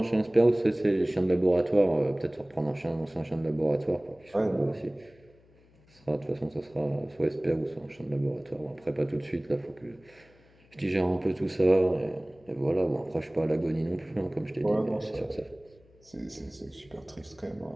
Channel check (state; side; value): noise; left; hum, 29 dB below the sound